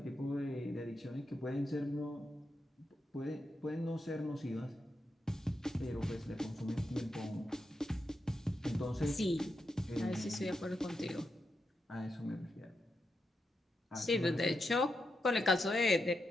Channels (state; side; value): normal; both; correlation 0.85